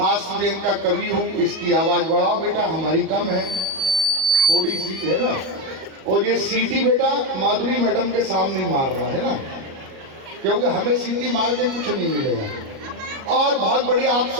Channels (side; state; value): left; late; 38 ms